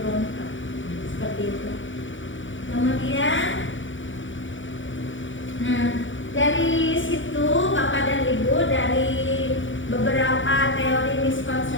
seperti itu. Kemudian, nah dari situ Bapak dan Ibu, dari beberapa teori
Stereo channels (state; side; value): late; right; 0.56 ms